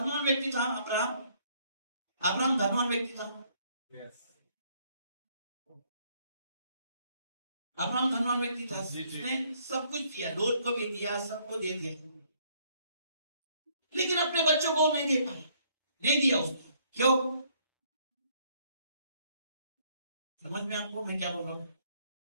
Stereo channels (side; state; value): both; inverted; correlation -0.66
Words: व्यक्ति था अब्राहम। अब्राहम धनवान व्यक्ति था। अब्राहम धनवान व्यक्ति था। उसने सब कुछ दिया, लोट को भी दिया, सबको दे दिया, लेकिन अपने बच्चों को नहीं दे पाया, नहीं दिया उसको। क्यों? समझ में आपको मैं क्या बोल रहा हूं?